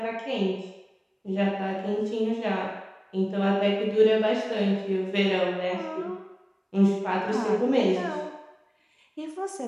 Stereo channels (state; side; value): identical; both; correlation 1.00